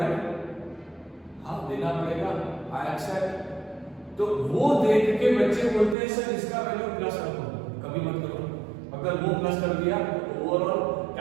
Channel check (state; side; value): drops out; left; at 6.0 s